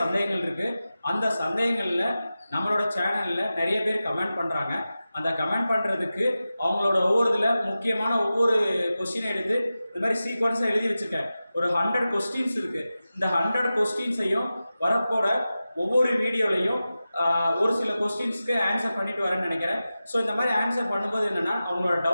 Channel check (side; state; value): both; inverted; correlation -0.94